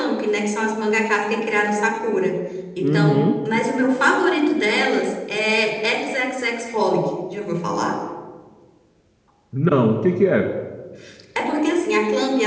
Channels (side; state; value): both; identical; correlation 1.00